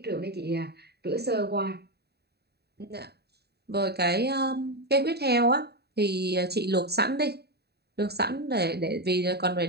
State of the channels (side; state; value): left; late; 0.47 ms